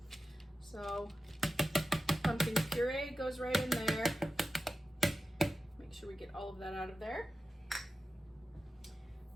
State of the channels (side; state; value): both; normal; correlation 0.93